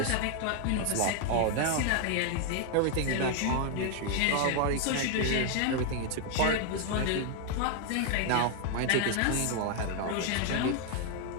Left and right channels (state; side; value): different; both; correlation 0.00